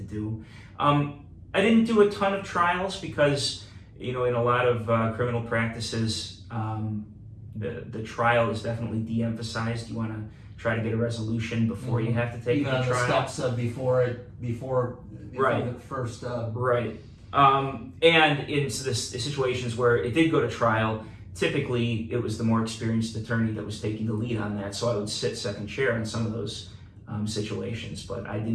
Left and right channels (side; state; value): both; identical; correlation 1.00